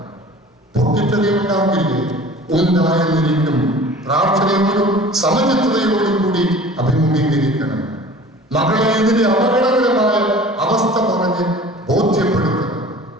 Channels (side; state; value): both; normal; correlation 0.44